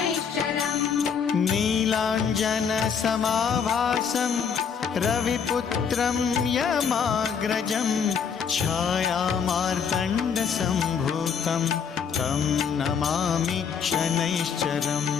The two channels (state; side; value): quieter; right; 6.8 dB